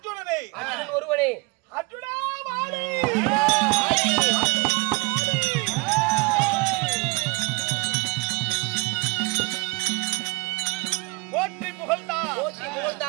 ஒருவனே. அர்ஜுனா வாழி, போற்றி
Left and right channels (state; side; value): quieter; left; 25.6 dB